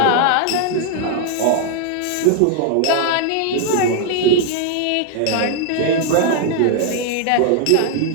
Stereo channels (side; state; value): both; different; correlation 0.00